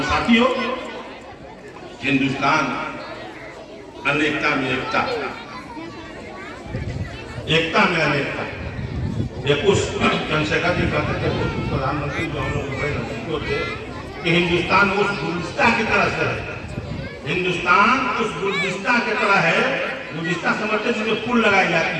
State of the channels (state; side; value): identical; both; correlation 1.00